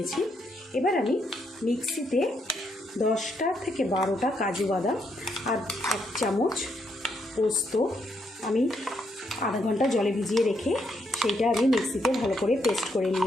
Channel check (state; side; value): normal; both; correlation 0.77